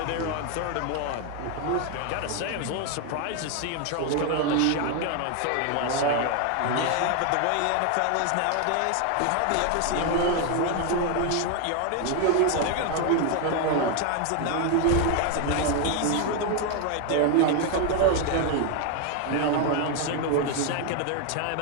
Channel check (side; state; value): both; different; correlation 0.01